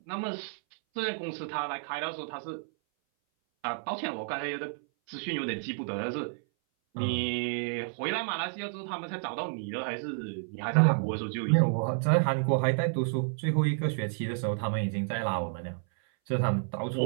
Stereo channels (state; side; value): silent; left; 57 dB below the other